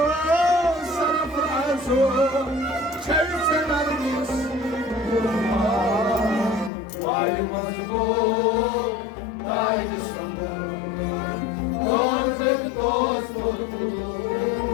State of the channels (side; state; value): right; drops out; at 6.7 s